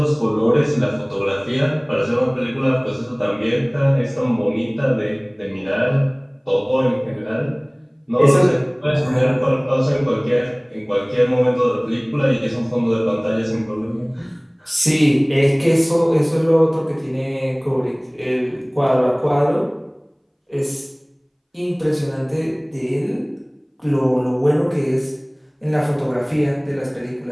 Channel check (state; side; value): identical; both; correlation 1.00